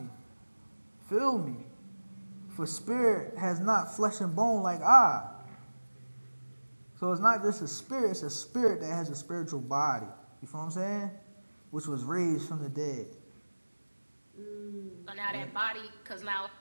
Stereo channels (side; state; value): both; inverted; correlation -1.00